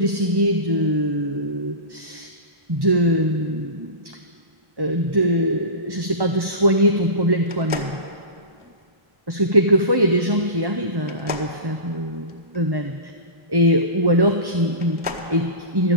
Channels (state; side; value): late; left; 1.1 ms